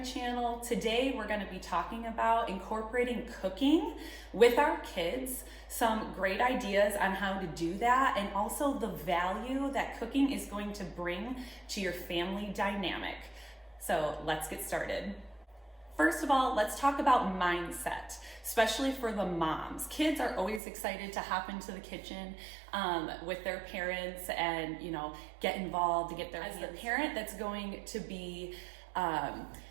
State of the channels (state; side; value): drops out; left; at 20.6 s